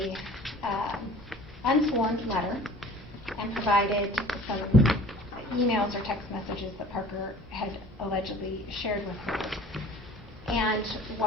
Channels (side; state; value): both; normal; correlation 0.47